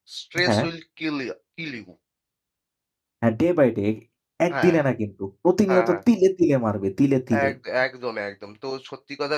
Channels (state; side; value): identical; both; correlation 1.00